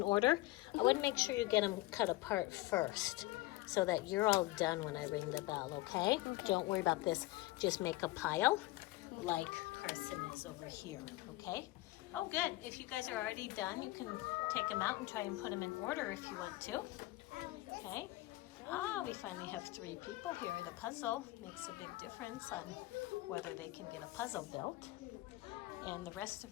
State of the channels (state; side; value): quieter; right; 19.2 dB